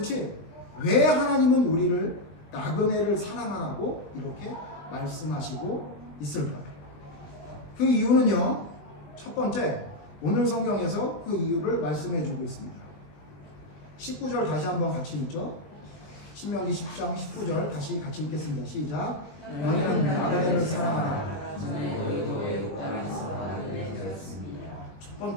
왜 하나님은 우리를 나그네를 사랑하라고 이렇게 말씀하시고 있을까요? 그 이유는요. 첫 번째 오늘 성경에서 그 이유를 말씀해 주고 있습니다. 19절 다시 한번 같이 읽죠. 신명기 10장 19절 다시 같이 읽겠습니다. 시작. 너희는 나그네를 사랑하라.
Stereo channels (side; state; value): right; late; 20 ms